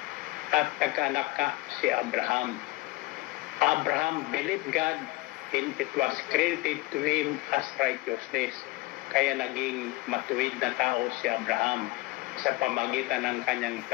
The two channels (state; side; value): quieter; right; 21.2 dB